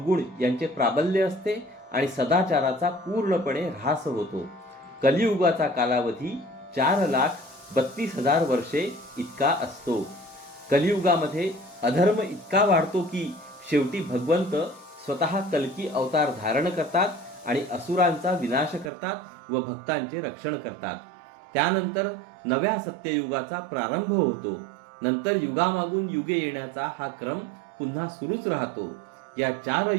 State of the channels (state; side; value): drops out; left; at 18.9 s